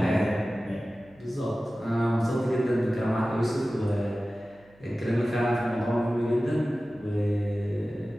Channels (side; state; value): right; noise; hum, 29 dB below the sound